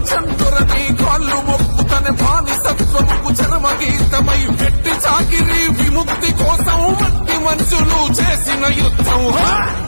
కాళ్ళు మొక్కుతన బానిసత్వముకు చరమగీతమై పెట్టి చాకిరి విముక్తి కోసం మట్టి మనుషులు చేసిన యుద్ధం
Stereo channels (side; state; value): both; inverted; correlation -1.00